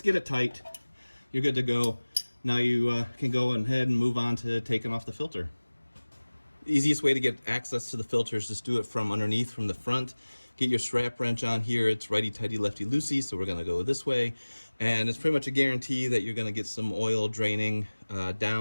get it tight. You're good to go. Now you can go ahead and move on to taking off the filter. The easiest way to get access to the filter is just do it from underneath, from the front. Get your strap wrench on here. It's righty-tighty, lefty-loosey, so we're going to go this way. And it's pretty much a guarantee that you're going to get some oil draining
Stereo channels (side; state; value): both; inverted; correlation -1.00